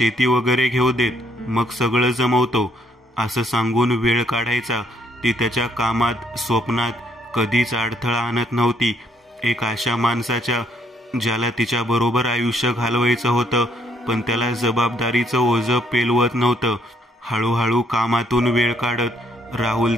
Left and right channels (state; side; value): normal; both; correlation 0.69